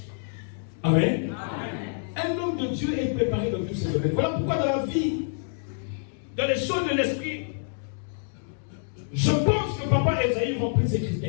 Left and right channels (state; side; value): silent; right; digital silence